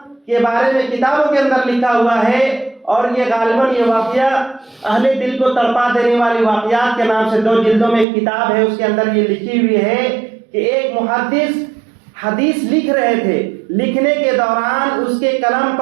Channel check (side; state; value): left; drops out; at 8.1 s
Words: کے بارے میں کتابوں کے اندر لکھا ہوا ہے، اور یہ غالباً یہ واقعہ اہل دل کو تڑپا دینے والی واقعات کے نام سے 2 جلدوں میں ایک کتاب ہے، اس کے اندر یہ لکھی ہوئی ہے کہ ایک محدث حدیث لکھ رہے تھے، لکھنے کے دوران اس کے قلم